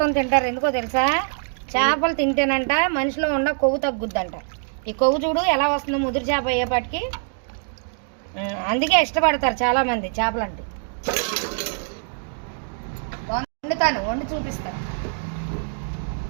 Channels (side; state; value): left; silent; digital silence